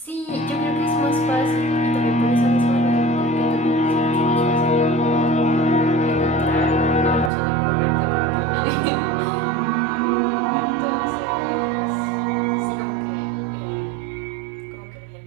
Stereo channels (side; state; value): left; drops out; at 7.3 s